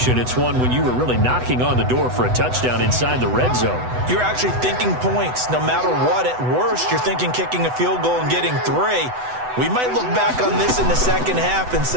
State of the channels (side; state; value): left; late; 8.0 ms